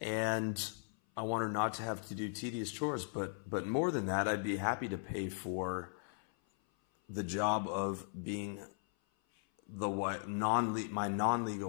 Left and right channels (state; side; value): silent; right; 53 dB below the other